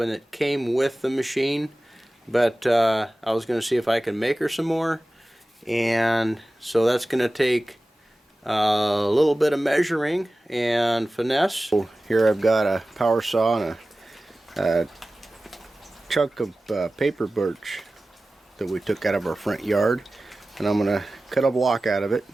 that came with the machine, but I was going to see if I can make her some more, and so that's going to take a little bit of measuring and finesse. So here I've got a power saw and a chunk of paper birch that we took out of our front yard, and I'm going to cut a block out of it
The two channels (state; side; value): normal; both; correlation 0.96